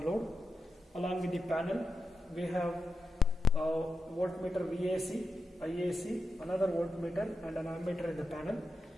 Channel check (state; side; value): normal; both; correlation 0.88